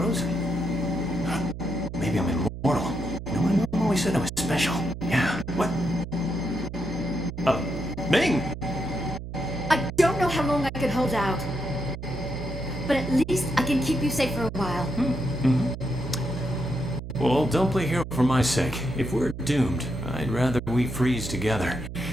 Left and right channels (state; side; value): noise; right; hum, 9 dB below the sound